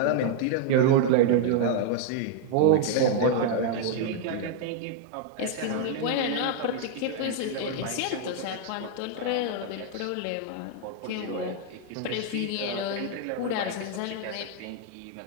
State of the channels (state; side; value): different; both; correlation 0.00